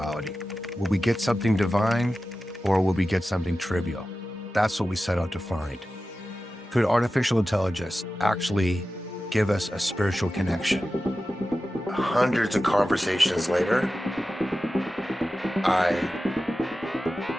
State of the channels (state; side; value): normal; both; correlation 0.94